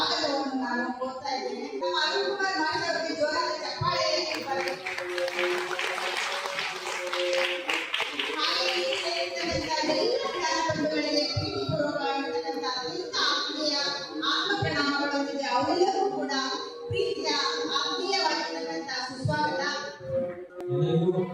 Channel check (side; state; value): both; identical; correlation 1.00